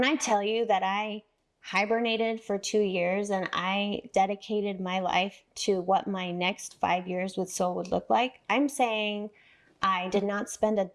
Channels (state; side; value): identical; both; correlation 1.00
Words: I tell you that I hibernated for 2 years and I dedicated my life to what my next 5 years with Sol would look like, I'm saying I did not spend a